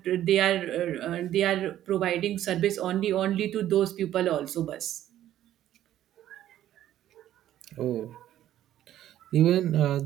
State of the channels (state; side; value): quieter; left; 12.4 dB